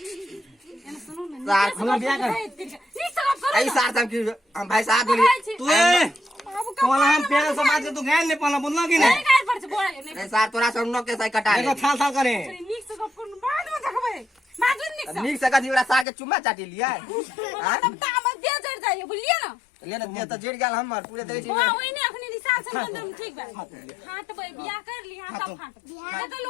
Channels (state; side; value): drops out; right; at 16.1 s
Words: एना सुनो ना सार, हमरा बियाह कर। नी सब करो आई सार तब की भाई साहब बोली तू कोला हम प्यार से बात तू गाय ने पला बोलना कि नहीं नहीं गाय पर से बोल नहीं नहीं सार तोरा सब नो के सही कटा देखो ले थाल थाल करे निक से गप करू बाद में देखबे माजुन निक से नीक से कदी ओरा सार के चुम्मा चाटी लिया हां तब दाम दे जड़ जाइए बुझलिए ना लेना दिया तो जेड़ गेल हमर पूरे देख छी हां ओइ ने अखनी रिसाल से बंदम ठीक बा हां तो बियाह कर ली हां तब फाट बियाह तो